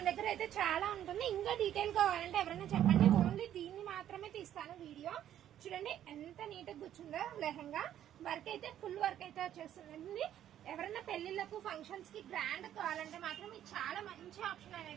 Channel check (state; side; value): quieter; left; 11.1 dB